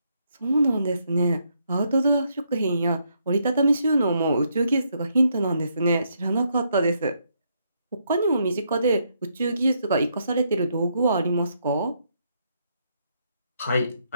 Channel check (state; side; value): inverted; both; correlation -0.75